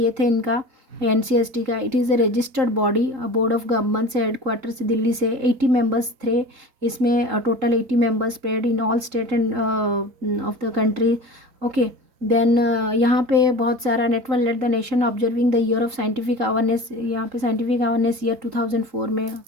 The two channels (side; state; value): left; late; 3.8 ms